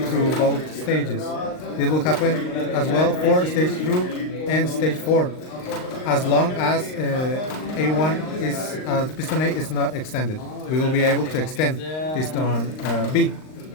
through both stages. This will happen as well for stage 2 and stage 4, as long as A1 is piston A is not extended. We will be able to extend piston B.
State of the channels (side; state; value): right; late; 39 ms